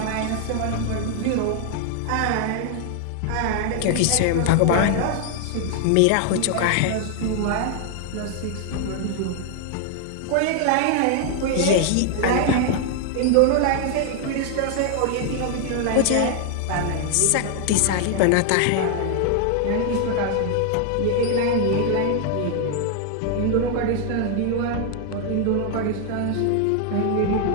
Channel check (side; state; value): both; different; correlation 0.00